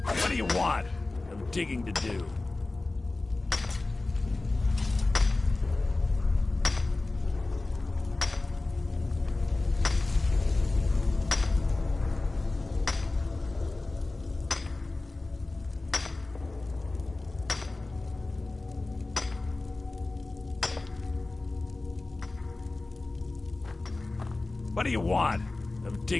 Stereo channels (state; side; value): quieter; right; 3.2 dB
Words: What do you want? I'm digging to do. What do you want? I'm